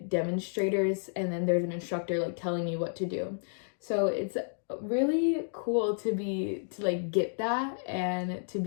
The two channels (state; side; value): silent; right; digital silence